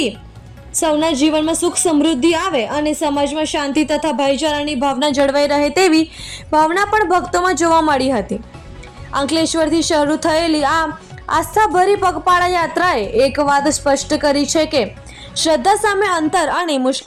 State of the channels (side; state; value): both; identical; correlation 1.00